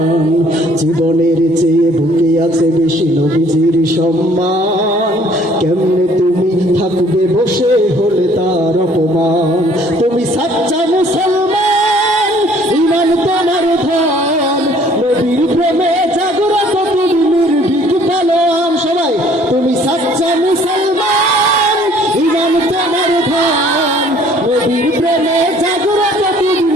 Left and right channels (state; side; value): normal; both; correlation 0.58